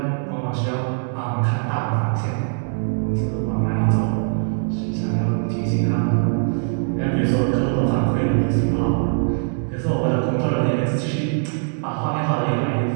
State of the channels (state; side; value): silent; left; 64 dB below the other